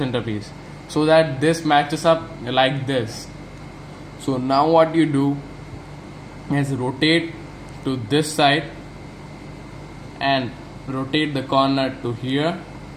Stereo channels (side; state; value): both; identical; correlation 1.00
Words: so that this matches up like this. So now what you do is rotate to this side and rotate the corner to here